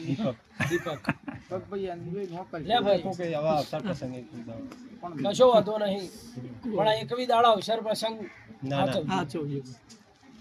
દીપક લે ભાઈ કે આવા અવસર પ્રસંગે કશો વાંધો નહીં. પણ આ એકવી દાડા અવસર પ્રસંગ ના ના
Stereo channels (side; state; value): both; identical; correlation 1.00